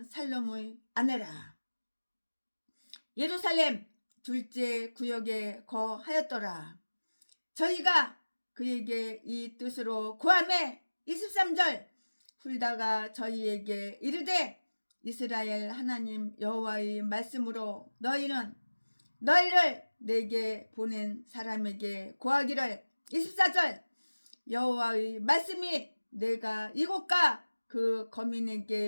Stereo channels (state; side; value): inverted; both; correlation -1.00